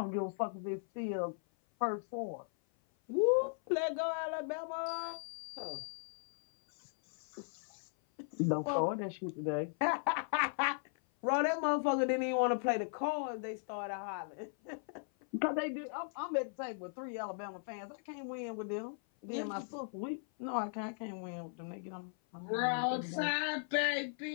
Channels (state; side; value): silent; right; 53 dB below the other